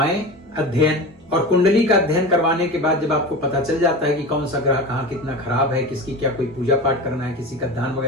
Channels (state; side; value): normal; both; correlation 0.29